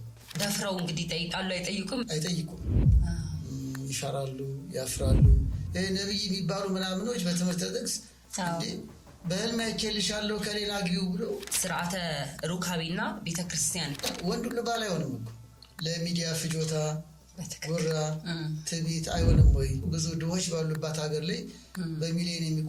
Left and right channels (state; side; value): identical; both; correlation 1.00